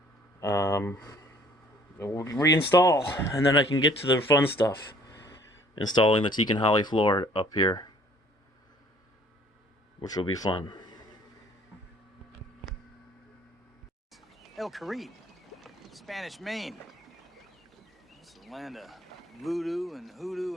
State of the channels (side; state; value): both; normal; correlation 0.56